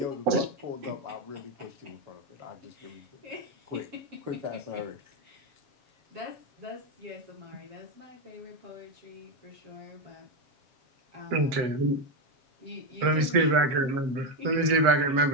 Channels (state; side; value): late; left; 7.4 ms